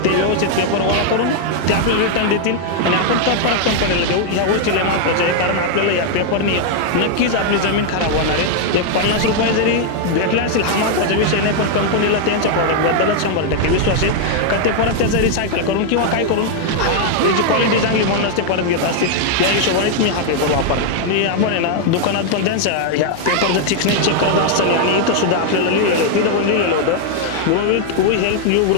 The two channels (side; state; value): both; different; correlation 0.00